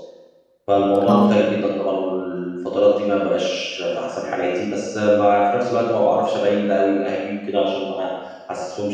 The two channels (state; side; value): identical; both; correlation 1.00